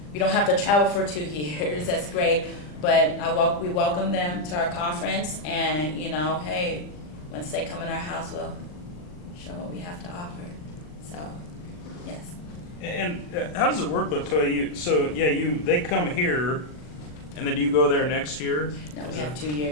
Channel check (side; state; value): right; late; 40 ms